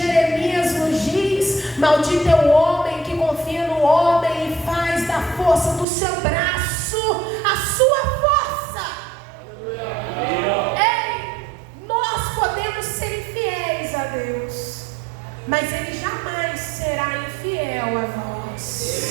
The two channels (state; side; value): drops out; left; at 5.9 s